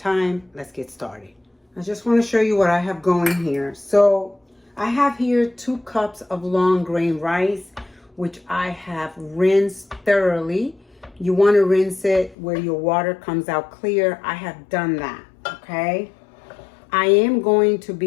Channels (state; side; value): drops out; right; at 12.4 s